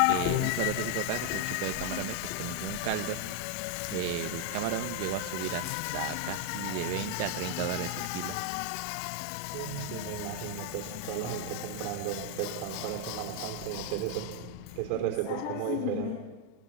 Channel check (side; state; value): both; different; correlation 0.00